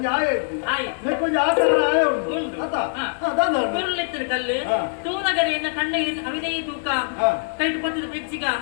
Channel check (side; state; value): right; silent; digital silence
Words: ಆಯ ಇತ್ತು ಕೊಂಚ ಆಕಾರ ಆಯ ಉಂಟು ಕುರುಳಿತ್ತಿನ ಕಲ್ಲು ತೂನಗರಿಯನ್ನ ಕಂಡ ಅವಿದೈ ತೂಕ ಕೈಟ್ ಪತ್ತದ ಬೆಜ್ಜಿಗ